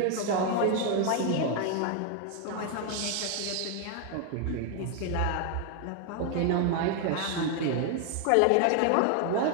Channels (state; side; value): different; both; correlation 0.01